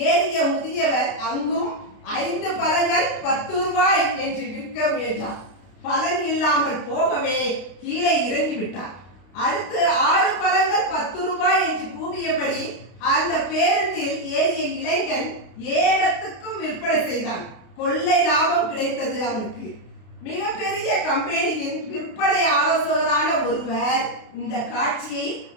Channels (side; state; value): right; late; 32 ms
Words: ஏறிய முதியவர் அங்கும் 5 பழங்கள் 10 ரூபாய் என்று விற்க முயன்றார். பலன் இல்லாமல் போகவே கீழே இறங்கிவிட்டார். அடுத்து 6 பழங்கள் 10 ரூபாய் என்று கூவியபடி அந்த பேருந்தில் ஏறிய இளைஞன் ஏகத்துக்கும் விற்பனை செய்தான். கொள்ளை லாபம் கிடைத்தது அவனுக்கு. மிகப்பெரிய கம்பெனியின் விற்பனை ஆலோசகரான ஒருவர் இந்த காட்சியை